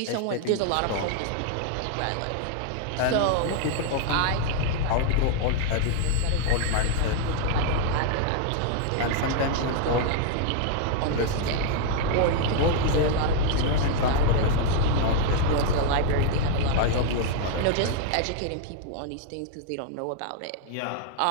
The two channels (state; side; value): different; both; correlation -0.01